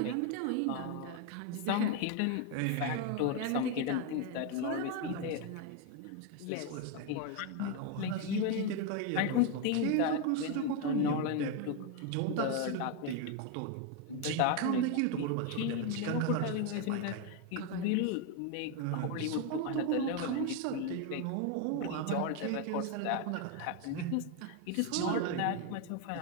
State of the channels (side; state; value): both; different; correlation 0.01